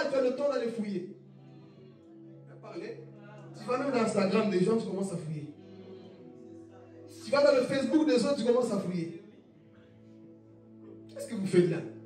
tu as le temps d'aller fouiller. Tu vas même dans Instagram des gens, tu commences à fouiller. Tu vas dans le Facebook des autres, tu commences à fouiller. Qu'est-ce que vous faites là?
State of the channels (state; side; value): identical; both; correlation 1.00